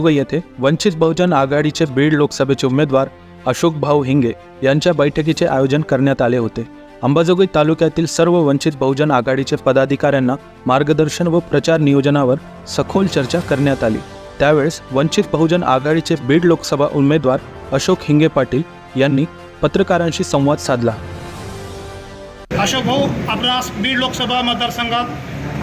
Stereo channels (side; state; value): both; identical; correlation 1.00